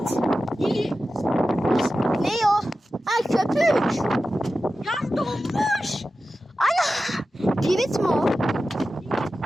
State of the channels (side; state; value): both; normal; correlation 0.93